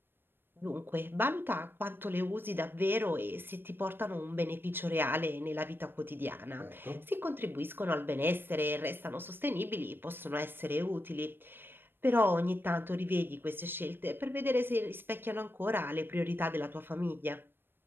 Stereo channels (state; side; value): late; left; 0.099 ms